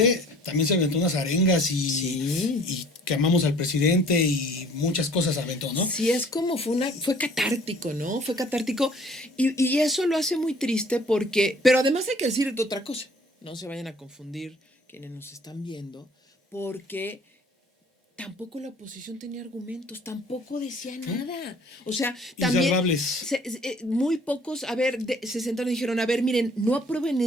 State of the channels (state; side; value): normal; both; correlation 0.54